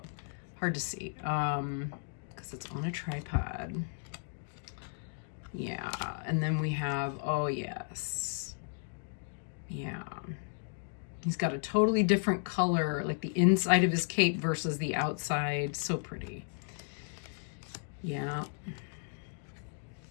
Hard to see, because it's on a tripod. Yeah, and then we have, oh yes, yeah. He's got a totally different color, like the inside of his cape versus the outside. So pretty. Yeah.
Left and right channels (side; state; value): right; silent; digital silence